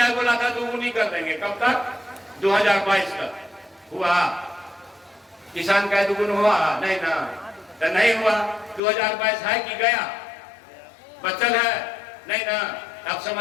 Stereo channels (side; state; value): right; drops out; at 8.8 s